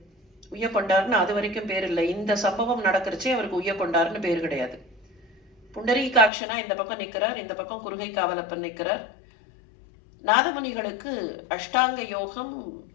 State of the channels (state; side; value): drops out; right; at 6.3 s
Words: உய்யக்கொண்டார்னு அது வரைக்கும் பேர் இல்லை. இந்த சம்பவம் நடக்கிறச்சே அவருக்கு உய்யக்கொண்டார்னு பேர் கிடையாது. புண்டரீகாட்சனா இந்த பக்கம் நிற்கிறார், இந்த பக்கம் குருகை காவலப்பன் நிற்கிறார். நாதமுனிகளுக்கு அஷ்டாங்க யோகம்,